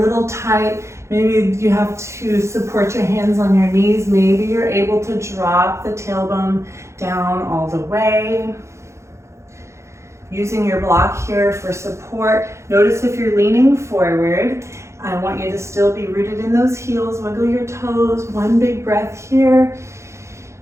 little tight. Maybe you have to support your hands on your knees. Maybe you're able to drop the tailbone down all the way. Using your block here for support. Notice if you're leaning forward, I want you to still be rooted in those heels. Wiggle your toes, one big breath here.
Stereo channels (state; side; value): late; left; 0.14 ms